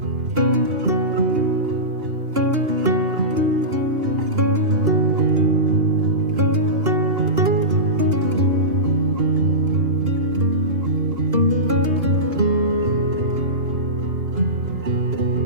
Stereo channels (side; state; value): left; late; 2.8 ms